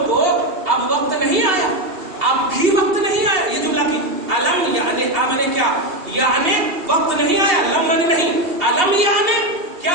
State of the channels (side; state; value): left; late; 2.8 ms